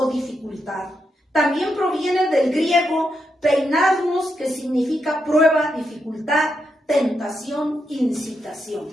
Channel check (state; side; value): normal; both; correlation 0.83